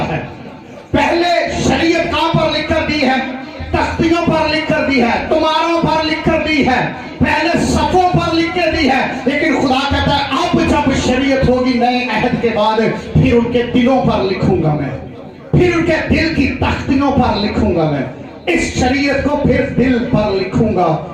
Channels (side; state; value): both; identical; correlation 1.00